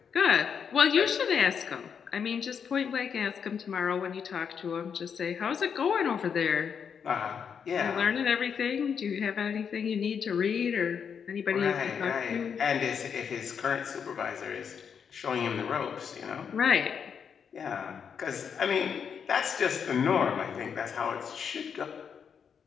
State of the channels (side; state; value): right; quieter; 7.0 dB